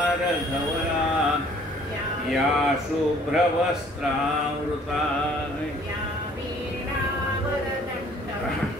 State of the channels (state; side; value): normal; both; correlation 0.57